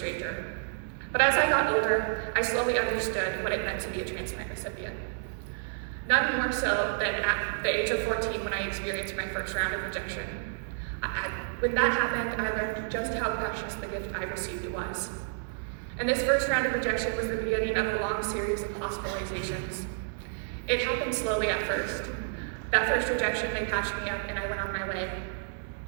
But as I got older, I slowly understood what it meant to be a transplant recipient. None more so than at the age of 14 when I experienced my first round of rejection. When that happened, I learned just how precious the gift I received was. And this first round of rejection was the beginning of a long series of hospitalizations. It happened slowly at first. That first rejection, they patched me up and I went on my way.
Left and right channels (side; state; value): left; silent; digital silence